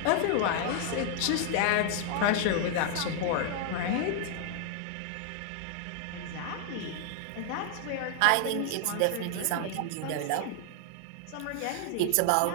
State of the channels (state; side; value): different; both; correlation 0.00